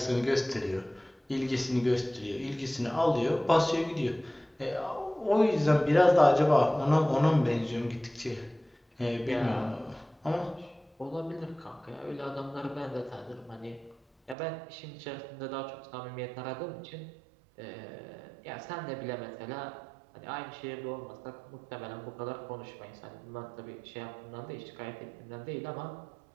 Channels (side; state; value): left; drops out; at 14.4 s